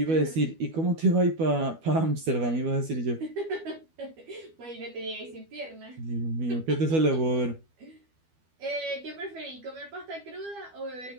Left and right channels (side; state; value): left; late; 12 ms